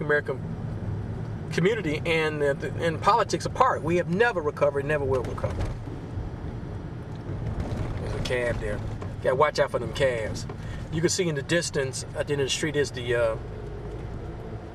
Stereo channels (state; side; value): identical; both; correlation 1.00